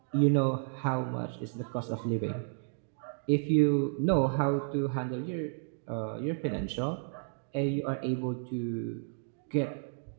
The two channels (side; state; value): left; silent; digital silence